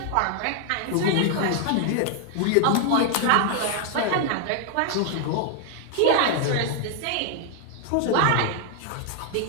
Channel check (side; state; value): both; different; correlation 0.00